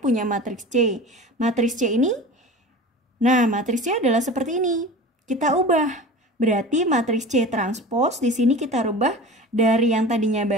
matriks C. Matriks C ini, nah matriks C adalah seperti ini. Kita ubah. Berarti matriks C transpose di sini kita rubah dari yang tadinya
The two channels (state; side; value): normal; both; correlation 0.35